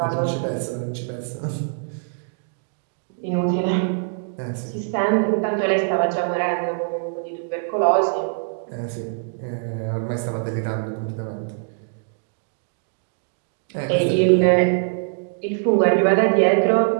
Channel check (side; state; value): left; silent; digital silence